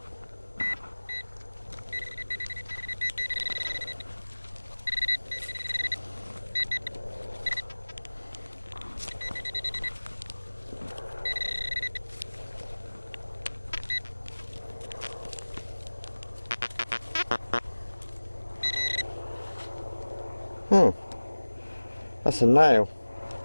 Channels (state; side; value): inverted; both; correlation -1.00